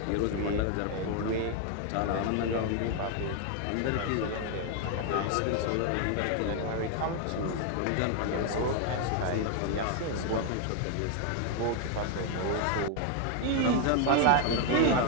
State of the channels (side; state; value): both; different; correlation 0.01